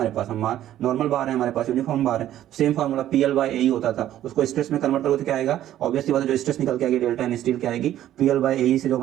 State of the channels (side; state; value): left; quieter; 12.4 dB